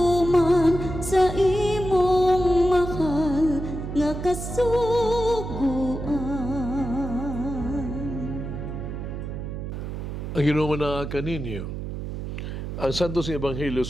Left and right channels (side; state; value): right; noise; hum, 6 dB below the sound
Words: sa imong mahal nga kasuguan. Ang ginumana kaninyo, ang Santos Ebanghelyo